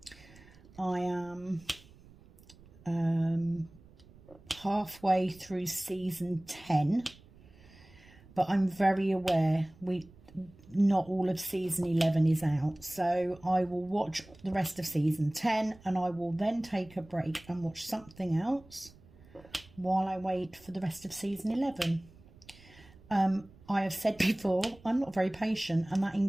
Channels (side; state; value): right; noise; rumble, 24 dB below the sound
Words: I am halfway through season 10, but I'm very aware not all of season 11 is out, so I will watch the rest of season 10 and I will then take a break and watch something else while I wait for the rest of season 11. I have said before, I'm not very patient, and that